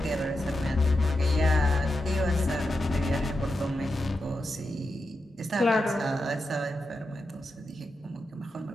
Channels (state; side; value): normal; both; correlation 0.88